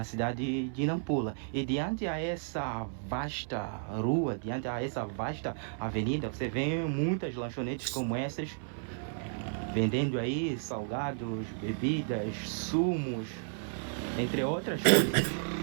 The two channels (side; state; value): left; silent; 56 dB below the other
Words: cidade de Nampula. E diante a essa vasta rua, diante a essa vasta avenida, você vê muitas lanchonetes como essas, vendendo aí salgados, bebidas, sumos, entre outras coisas.